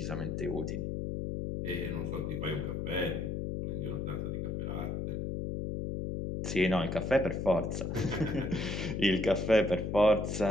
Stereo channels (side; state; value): left; noise; hum, 2 dB below the sound